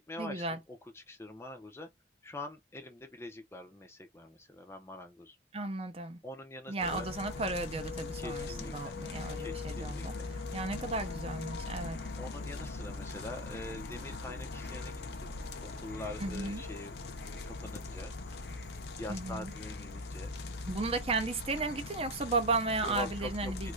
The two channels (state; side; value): normal; both; correlation 0.20